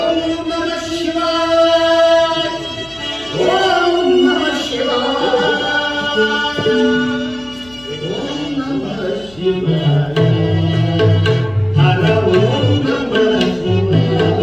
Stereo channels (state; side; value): noise; left; hum, 24 dB below the sound